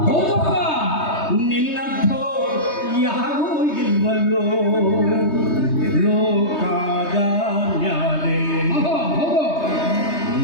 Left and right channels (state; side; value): late; right; 3.2 ms